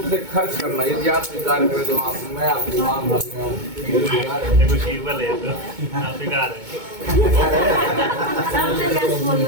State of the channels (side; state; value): left; late; 2.2 ms